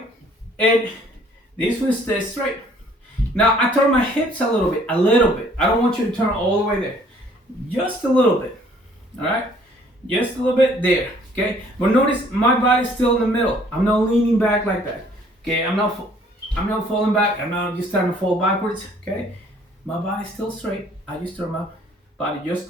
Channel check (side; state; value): both; normal; correlation 0.59